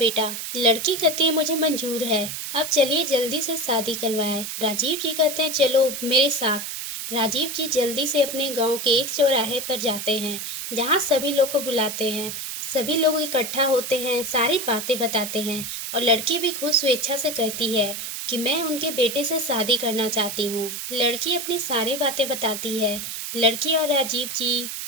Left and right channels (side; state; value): right; noise; hiss, 6 dB below the sound